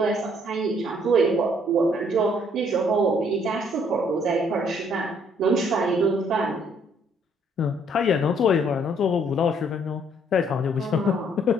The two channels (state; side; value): normal; both; correlation 0.65